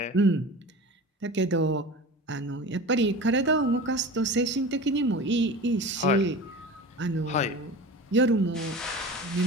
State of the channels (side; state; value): both; normal; correlation 0.34